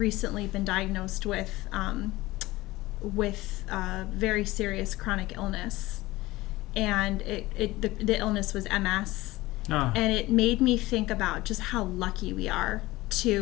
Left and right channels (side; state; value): right; quieter; 19.0 dB